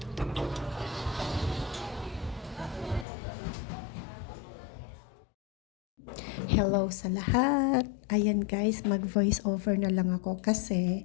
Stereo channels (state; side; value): drops out; right; at 3.1 s